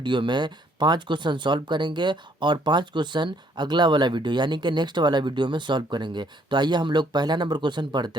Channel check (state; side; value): normal; both; correlation 0.65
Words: में 5 क्वेश्चन सॉल्व करेंगे और 5 क्वेश्चन अगला वाला वीडियो यानी कि नेक्स्ट वाला वीडियो में सॉल्व करेंगे। तो आइए हम लोग पहला नंबर क्वेश्चन